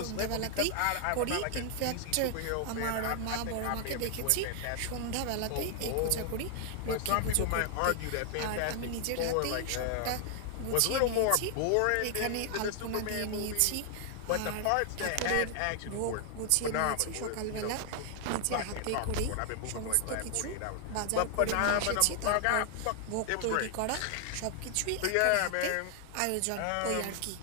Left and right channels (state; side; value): different; both; correlation 0.00